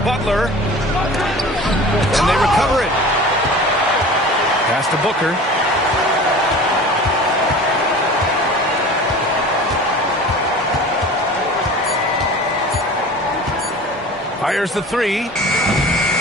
And they recover it. Pass to Booker. Fires the 3.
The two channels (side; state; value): both; normal; correlation 0.39